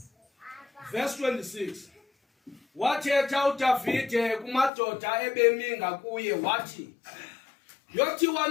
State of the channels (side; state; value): right; drops out; at 4.7 s